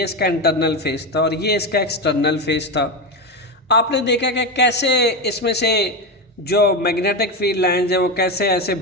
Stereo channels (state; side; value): normal; both; correlation 0.15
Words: इसका इंटरनल फेस था और ये इसका एक्सटर्नल फेस था। आपने देखा कि कैसे इसमें से जो मैग्नेटिक फील्ड लाइंस हैं वो कैसे ऐसे